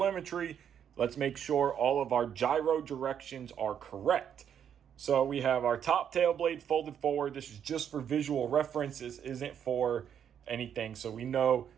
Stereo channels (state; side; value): quieter; left; 8.7 dB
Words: let's make sure all of our gyro directions are correct. So we have our top tail blade folded forward. This is just for visual reference. This isn't for anything. So we know